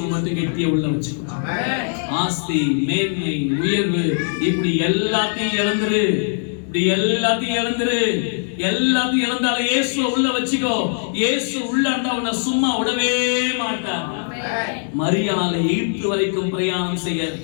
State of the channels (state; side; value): silent; right; digital silence